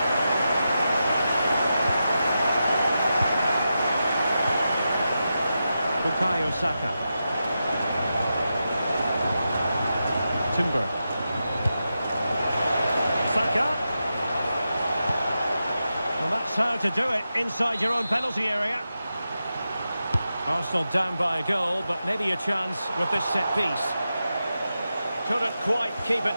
Bukayo Saka. Timber. Saka. Well, that's how to do it inside your own penalty area. Arsenal down by a goal, but maybe a chance with this set piece. Couldn't quite keep it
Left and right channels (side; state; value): both; inverted; correlation -0.89